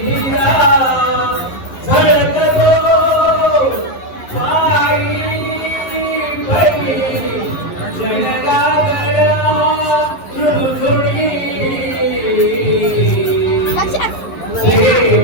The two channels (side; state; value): right; late; 11 ms